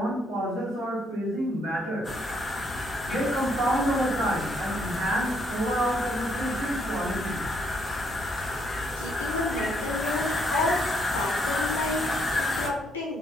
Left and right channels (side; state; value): both; normal; correlation 0.72